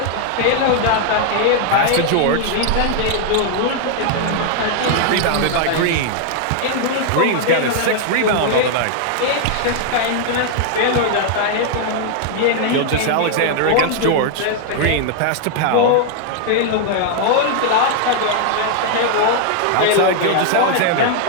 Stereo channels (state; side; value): different; both; correlation 0.00